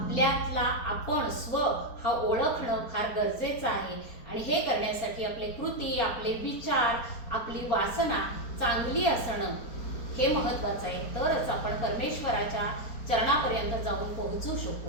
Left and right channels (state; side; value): late; right; 4.3 ms